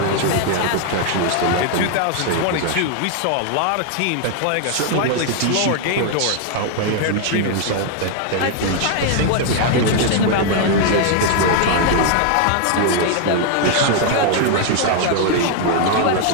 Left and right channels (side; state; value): both; different; correlation 0.00